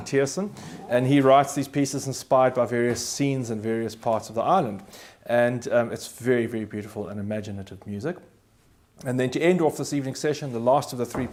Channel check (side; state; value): both; identical; correlation 1.00